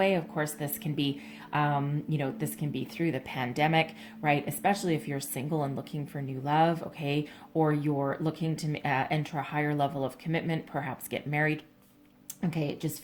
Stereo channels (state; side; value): identical; both; correlation 1.00